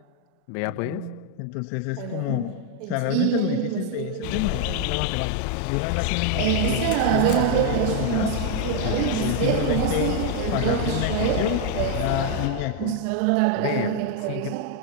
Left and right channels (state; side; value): different; both; correlation 0.00